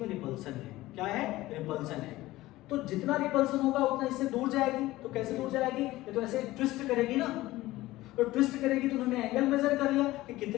रिपल्सन है। क्या है, रिपल्सन है। तो जितना रिपल्सन होगा उतना इससे दूर जाएगी। तो कैसे दूर जाएगी, ये तो ऐसे ट्विस्ट करेगी ना, तो ट्विस्ट करेगी तो उन्होंने एंगल मेजर कर लिया कि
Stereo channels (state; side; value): quieter; right; 17.5 dB